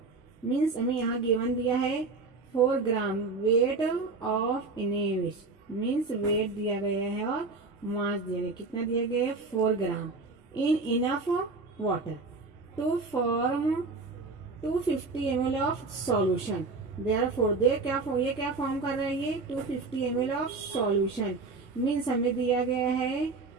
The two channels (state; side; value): quieter; left; 3.9 dB